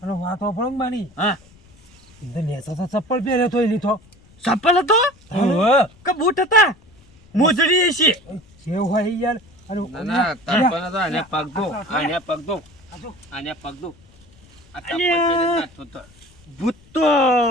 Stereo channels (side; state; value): left; noise; rumble, 27 dB below the sound